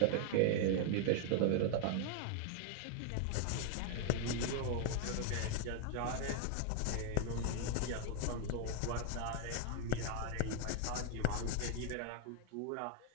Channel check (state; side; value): different; both; correlation 0.00